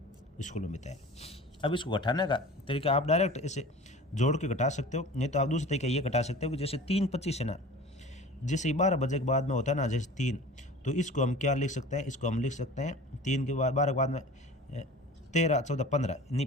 स्कूल में बिताया। अब इसको घटाने का तरीका आप डायरेक्ट इसे जोड़ के घटा सकते हो, नहीं तो आप दूसरे तरीके ये घटा सकते हो कि जैसे 3:25 है ना, जैसे 12 बजे के बाद में होता है ना, जैसे 3, तो इसको हम क्या लिख सकते हैं, इसको हम लिख सकते हैं 3 के बाद 12 के बाद में 13, 14, 15, नहीं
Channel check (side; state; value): both; normal; correlation 0.39